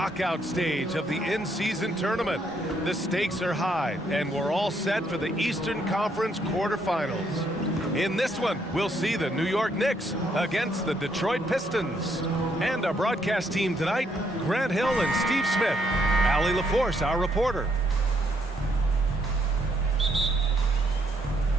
stage of the in-season tournament. The stakes are high, and we're all set for the Eastern Conference quarterfinals. In this one, we'll see the New York Knicks against the Detroit Pistons. And our broadcast team tonight, Grant Hill and Steve Smith. Allie LaForce, our reporter.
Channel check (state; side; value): normal; both; correlation 0.72